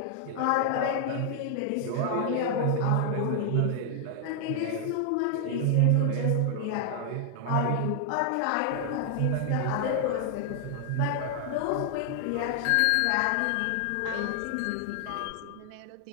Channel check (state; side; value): different; both; correlation 0.00